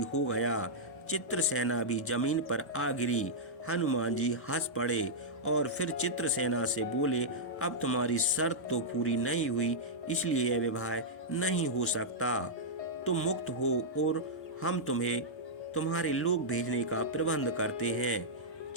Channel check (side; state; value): both; normal; correlation -0.10